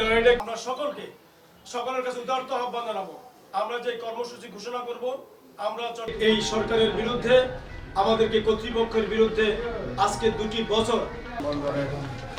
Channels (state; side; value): identical; both; correlation 1.00